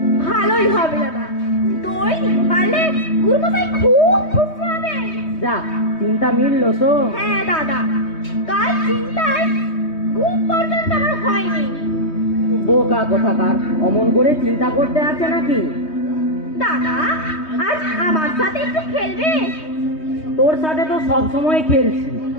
ভালোই হবে দাদা, দই পারলে গুরুমশাই খুব খুশি হবে। যা, চিন্তা মিললো তো? হ্যাঁ দাদা, কাল চিন্তায় ঘুম পর্যন্ত আমার হয়নি। বোকা কোথাকার, অমন করে চিন্তা করতে আছে নাকি? দাদা, আজ আমার সাথে একটু খেলবে? তোর সাথে তো সব সময় খেলছি,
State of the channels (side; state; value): right; late; 3.2 ms